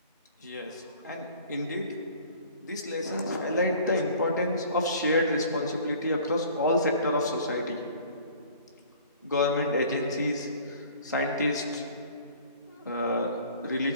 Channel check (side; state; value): both; inverted; correlation -0.48